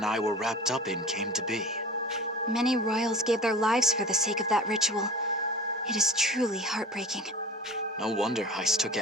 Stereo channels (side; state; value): both; normal; correlation 0.38